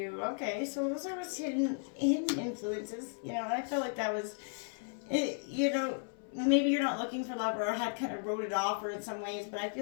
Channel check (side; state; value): right; silent; 55 dB below the other